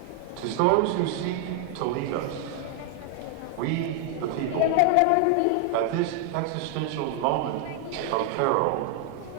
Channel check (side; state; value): both; different; correlation 0.00